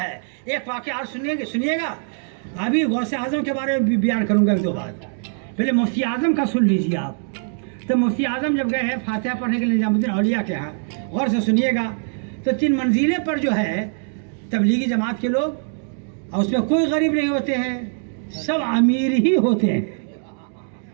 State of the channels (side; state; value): left; silent; 62 dB below the other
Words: ہے. ایک واقعہ اور سنیے گا. ابھی غوث اعظم کے بارے میں بھی بیان کروں گا ایک دو بات. پہلے مفتی اعظم کا سن لیجیے آپ. تو مفتی اعظم جب گئے ہیں فاتحہ پڑھنے کے لیے نظام الدین اولیاء کے ہاں، غور سے سنیے گا. تو 3 منزلیں پر جو ہے تبلیغی جماعت کے لوگ، اور اس میں کوئی غریب نہیں ہوتے ہیں، سب امیر ہی ہوتے ہیں.